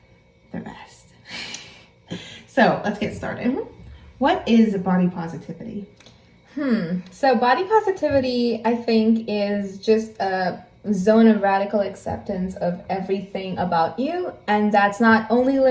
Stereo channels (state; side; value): identical; both; correlation 1.00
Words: the rest. So let's get started. Mm-hmm. What is body positivity? So body positivity, I think, is just a zone of radical acceptance of everything about you, and that's not only